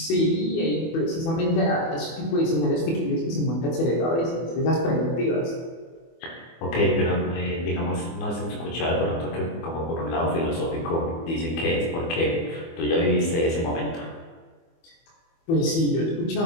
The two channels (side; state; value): right; late; 24 ms